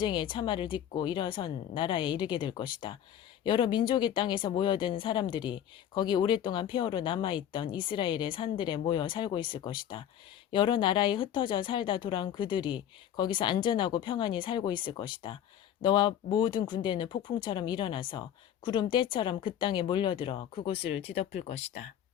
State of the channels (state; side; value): quieter; right; 10.1 dB